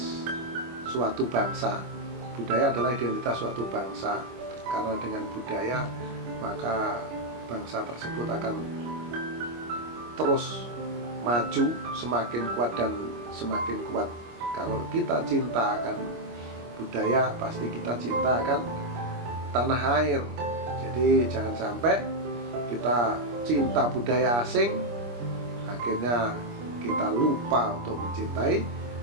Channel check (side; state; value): left; late; 25 ms